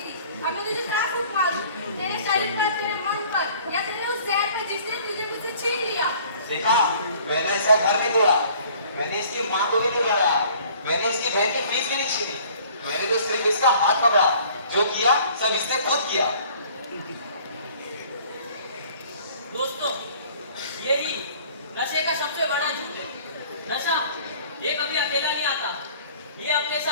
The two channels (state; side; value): inverted; both; correlation -0.53